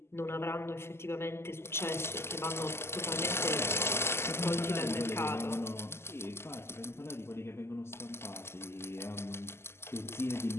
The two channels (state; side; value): late; right; 0.12 ms